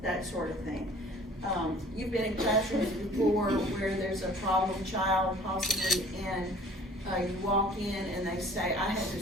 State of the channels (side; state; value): both; normal; correlation 0.50